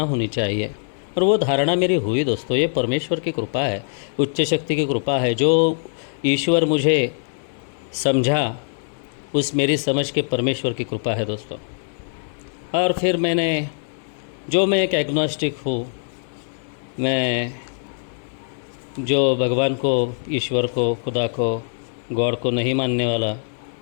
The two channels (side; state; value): right; silent; digital silence